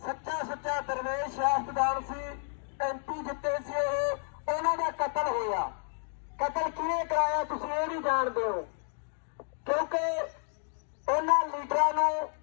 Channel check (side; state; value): right; silent; 57 dB below the other